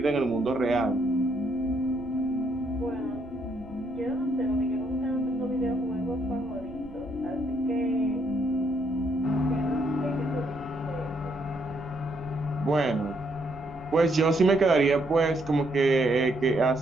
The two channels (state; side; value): noise; right; rumble, 19 dB below the sound